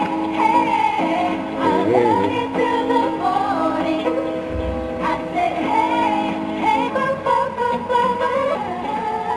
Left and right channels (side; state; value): both; identical; correlation 1.00